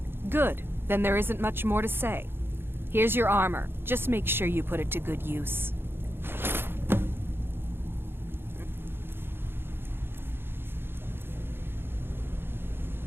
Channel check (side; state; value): left; late; 0.11 ms